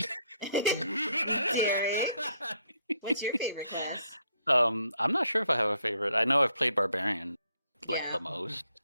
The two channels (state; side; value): inverted; both; correlation -0.71